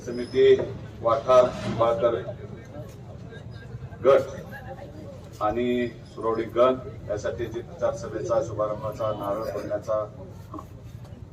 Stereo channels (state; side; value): identical; both; correlation 1.00